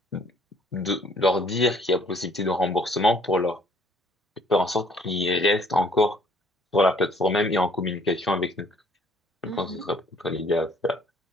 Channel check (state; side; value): normal; both; correlation 0.60